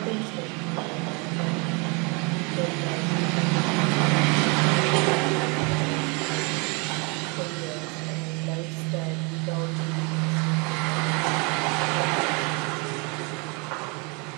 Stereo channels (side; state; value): left; quieter; 31.4 dB